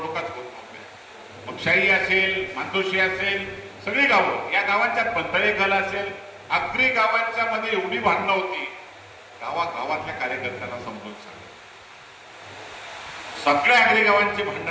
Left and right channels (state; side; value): identical; both; correlation 1.00